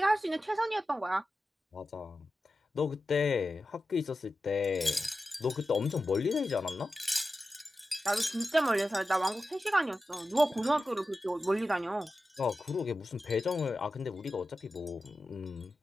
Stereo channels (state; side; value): normal; both; correlation 0.93